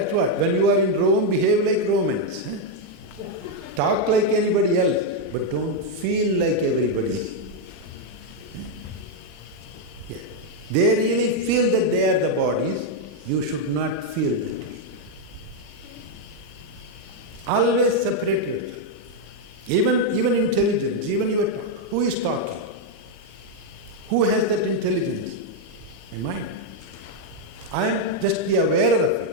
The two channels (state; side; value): late; left; 27 ms